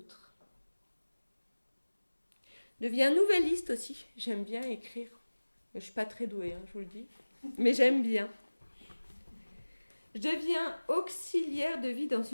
Je deviens nouvelliste aussi. J'aime bien écrire. Je ne suis pas très douée, je vous le dis. Mais j'aime bien. Je deviens auxiliaire de vie dans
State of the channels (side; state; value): both; inverted; correlation -1.00